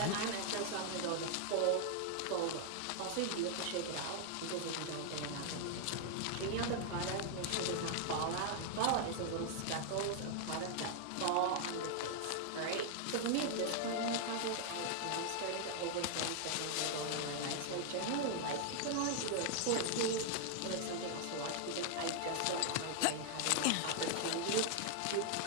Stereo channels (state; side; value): different; both; correlation 0.00